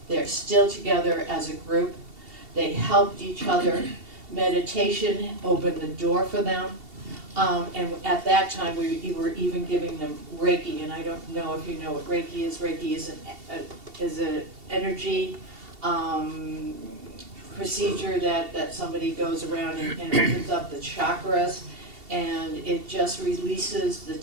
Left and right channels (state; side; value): late; left; 2.7 ms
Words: they're still together as a group. They helped each other. Meditation opened the door for them. And at that time, we were even giving them Reiki, and I don't know if you know what Reiki is. Reiki is an energy procedure that somebody goes around and opens up the chakras, and it just releases the